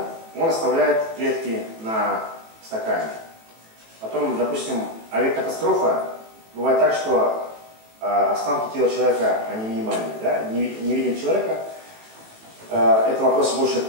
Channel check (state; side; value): late; left; 18 ms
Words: Он оставляет клетки на стакане. Потом, допустим, авиакатастрофа, бывает так, что останки тела человека, они минимальные, да? не видим человека. Это вопрос больше